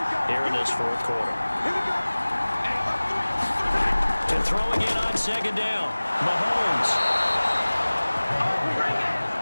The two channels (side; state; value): both; inverted; correlation -1.00